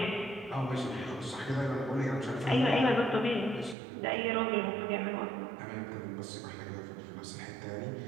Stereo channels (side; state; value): left; drops out; at 3.8 s